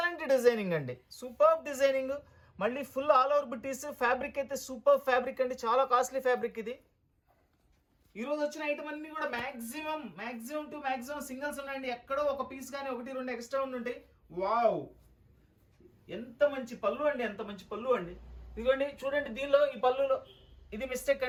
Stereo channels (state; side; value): identical; both; correlation 1.00